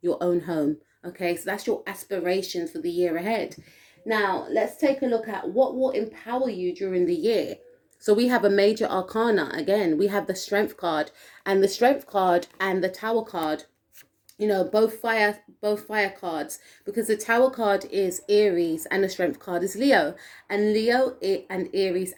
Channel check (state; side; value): identical; both; correlation 1.00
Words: your own home. Okay, so that's your aspirations for the year ahead. Now let's take a look at what will empower you during the year. So we have a major arcana. Again, we have the Strength card, and the Strength card and the Tower card, you know, both fire cards, because the Tower card is Aries and the Strength card is Leo. And Leo and Aries